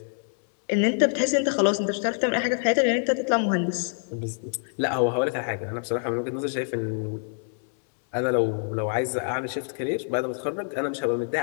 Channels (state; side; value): silent; right; digital silence